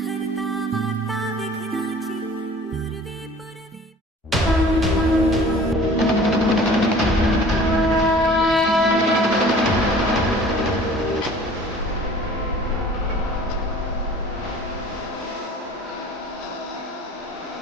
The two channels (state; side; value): normal; both; correlation 0.47